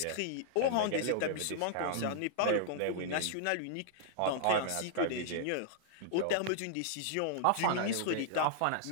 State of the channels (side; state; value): both; different; correlation -0.01